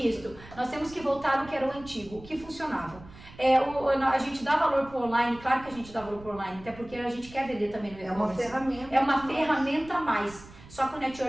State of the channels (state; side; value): noise; right; rumble, 19 dB below the sound